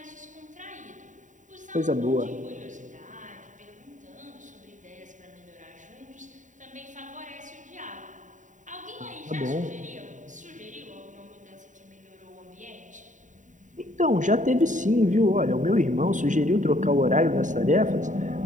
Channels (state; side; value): late; left; 0.36 ms